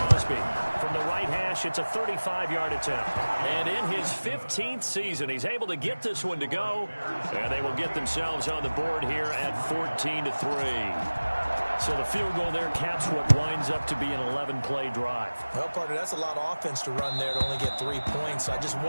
From the right hash, it's a 35-yard attempt. And in his 15th season, he's able to get this one to go. And they will get themselves on the board here at 14-3. So the field goal there caps what winds up to be an 11-play drive. Well, partner, that's a lot of offense to run there to only get 3 points. So I just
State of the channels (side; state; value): both; inverted; correlation -1.00